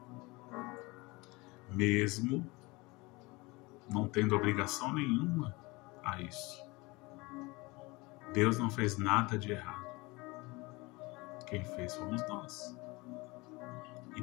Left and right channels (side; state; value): right; quieter; 24.1 dB